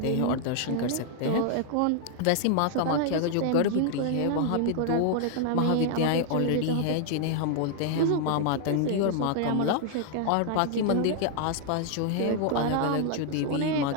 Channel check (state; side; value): different; both; correlation 0.00